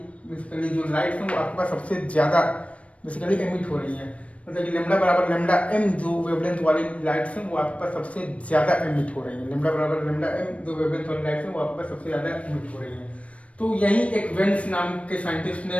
बेसिकली जो लाइट है वो आपके पास सबसे ज्यादा बेसिकली एमिट हो रही है। मतलब कि लेमडा बराबर लेमडा एम जो वेवलेंथ वाली लाइट्स हैं वो आपके पास सबसे ज्यादा एमिट हो रही है। लेमडा बराबर लेमडा एम जो वेवलेंथ वाली लाइट्स हैं वो आपके पास सबसे ज्यादा एमिट हो रही है। तो यही एक वेन्स नाम के साइंटिस्ट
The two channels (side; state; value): right; late; 0.064 ms